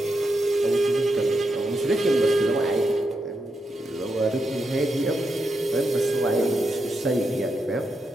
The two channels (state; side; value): normal; both; correlation 0.84